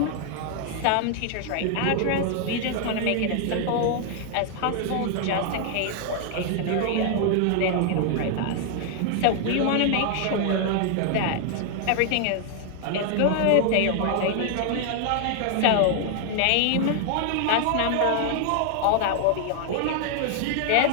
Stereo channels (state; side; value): different; both; correlation 0.00